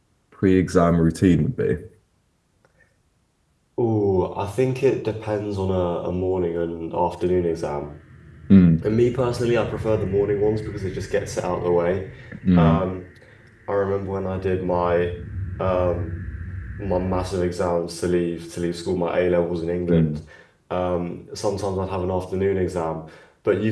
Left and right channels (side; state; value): both; identical; correlation 1.00